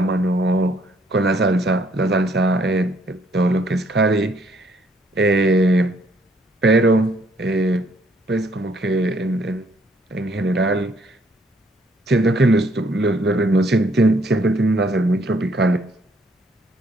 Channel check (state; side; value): normal; both; correlation 0.66